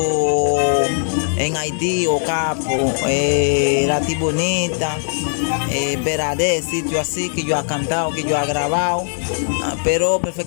en Haití, Ocapo, La Tibonita, Veradé, sitio así que yo he cantado, que yo he grabado, pero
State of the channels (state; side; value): silent; right; digital silence